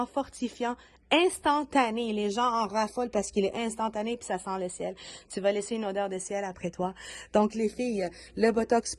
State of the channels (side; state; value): both; identical; correlation 1.00